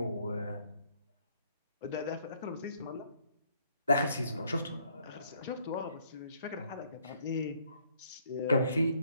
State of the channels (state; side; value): inverted; both; correlation -0.66